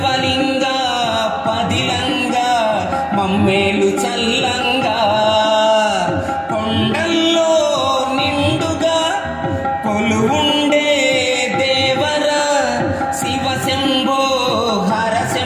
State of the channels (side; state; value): both; identical; correlation 1.00